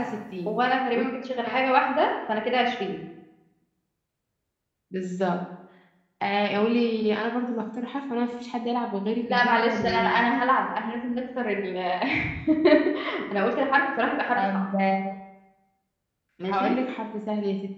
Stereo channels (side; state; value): both; identical; correlation 1.00